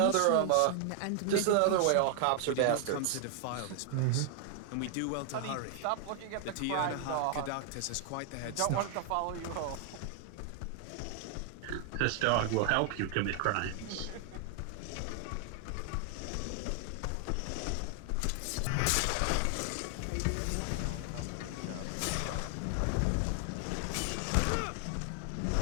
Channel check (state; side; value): different; both; correlation 0.00